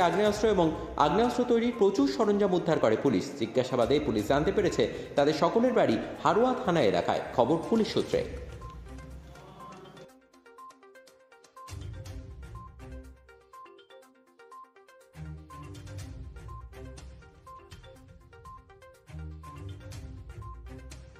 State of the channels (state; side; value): identical; both; correlation 1.00